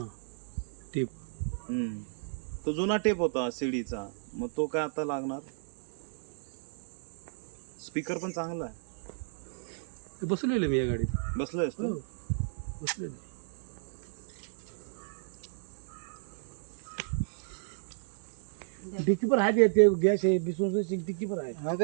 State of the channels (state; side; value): silent; left; digital silence